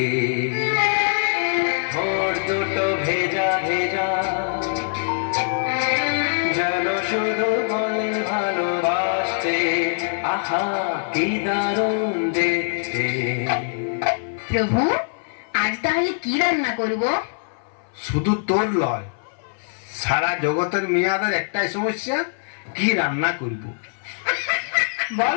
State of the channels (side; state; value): right; silent; 58 dB below the other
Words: ঠোঁট দুটো ভেজা ভেজা, যেন শুধু বলে ভালোবাসতে। আহা কি দারুণ দেখতে। প্রভু, আজ তাহলে কি রান্না করব? শুধু তোর লয়, সারা জগতের মেয়াদের একটাই সমস্যা, কি রান্না করব।